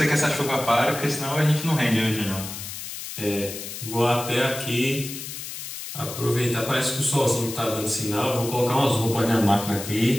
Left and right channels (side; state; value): left; noise; hiss, 9 dB below the sound